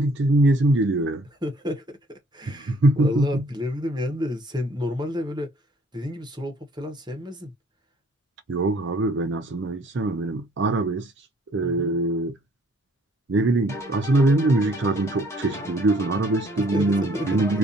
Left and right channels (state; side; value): normal; both; correlation 0.59